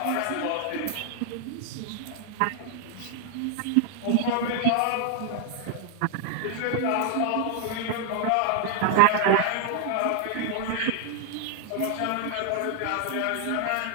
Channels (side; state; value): both; different; correlation 0.00